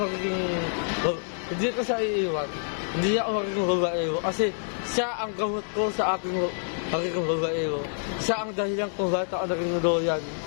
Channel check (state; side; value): silent; right; digital silence